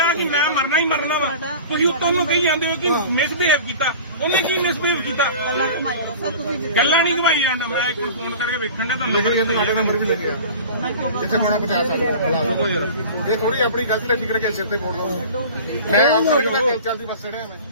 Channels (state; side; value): inverted; both; correlation -0.39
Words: ਕਿ ਮੈਂ ਮਰਨਾ ਹੀ ਮਰਨਾ ਵਾ। ਤੁਸੀਂ ਉੱਤੋਂ ਨੂੰ ਕਹੀ ਜਾਂਦੇ ਹੋ ਕਿ ਮਿਸਬਿਹੇਵ ਕੀਤਾ। ਉਹਨੇ ਕੀ ਮਿਸਬਿਹੇਵ ਕੀਤਾ? ਗੱਲਾਂ ਕਮਾਈ ਲਓ ਸਰ ਤੁਸੀਂ ਜਿੱਦਾਂ ਗੱਲਾਂ ਨਹੀਂ ਘਵਾਈ ਜਾਂਦਾ। ਮੈਂ ਇੱਕ ਫੋਨ ਕਰਕੇ ਵੇਖਣ ਦਾ ਤੁਹਾਨੂੰ ਲਿਖ ਲਿਆ ਤੁਹਾਡਾ ਨੰਬਰ ਵੀ ਲੱਗਿਆ ਜਿੱਥੇ ਹੋਣਾ ਪਹੁੰਚਾ ਸਕਦਾ। ਇਹ ਥੋੜੀ ਆਪਣੀ ਗਲਤੀ ਤੇ ਫਿਕਰ ਕੇ ਸਿਰ ਤੇ ਫੋੜ ਲਓ। ਮੈਂ ਆਪ ਕਰਕੇ ਚੱਲਦੀ ਬੱਸ ਚੜਿਆ ਮੈਂ